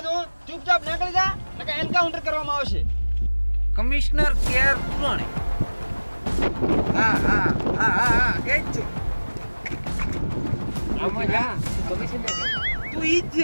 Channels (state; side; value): inverted; both; correlation -1.00